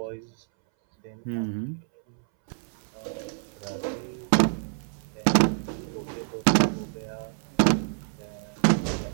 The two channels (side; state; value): left; silent; 60 dB below the other